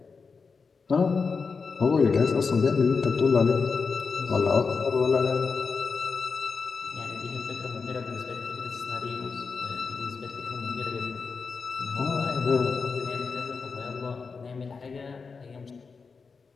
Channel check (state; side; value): quieter; right; 5.0 dB